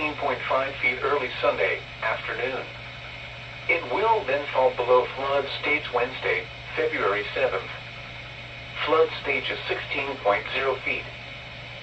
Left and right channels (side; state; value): both; identical; correlation 1.00